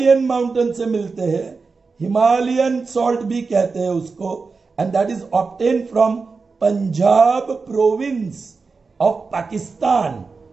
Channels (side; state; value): left; quieter; 4.5 dB